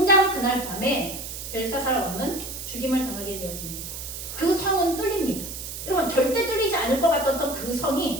밤에 벨사살 왕은 죽임을 당하게 되어집니다. 그 성은 뚫립니다. 여러분 절대 뚫리지 않을 것 같았던 그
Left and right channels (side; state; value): right; noise; hiss, 8 dB below the sound